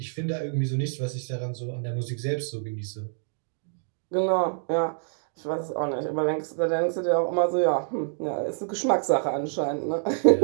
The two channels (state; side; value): silent; left; digital silence